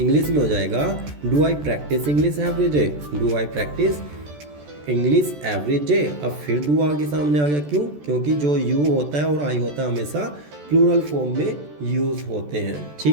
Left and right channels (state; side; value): late; left; 14 ms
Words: में हो जाएगा do I practice English every day. Do I practice English every day. अब फिर डू आगे सामने आ गया, क्यों, क्योंकि जो यू होता है और आई होता है हमेशा प्लूरल फॉर्म में यूज़ होते हैं।